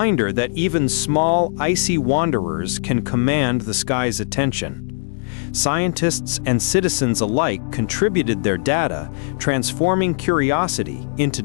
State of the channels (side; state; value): right; silent; digital silence